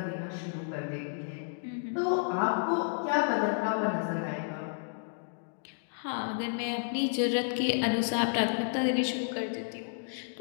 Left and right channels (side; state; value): right; silent; digital silence